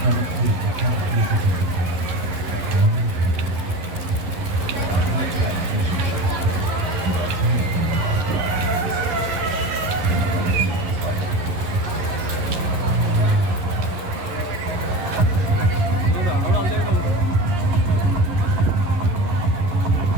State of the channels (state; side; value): late; left; 11 ms